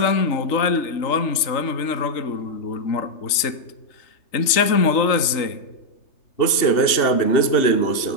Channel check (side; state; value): right; late; 3.3 ms